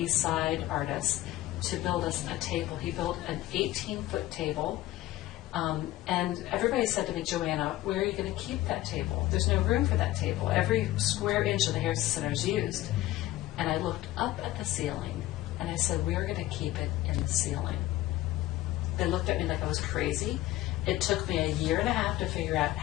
Side artist, to build us a table. He built an 18-foot table. And everybody said to me, Joanna, where are you going to keep that table? There's no room for that table. Every square inch of the Harrison Center is used. And I looked up at the ceiling, and I said, we're going to keep it in the ceiling. They looked at me like I was crazy. It took me 1.5 years to figure out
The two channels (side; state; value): right; quieter; 15.9 dB